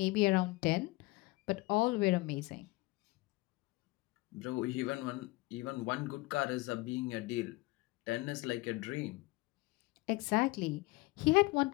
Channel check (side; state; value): right; quieter; 22.1 dB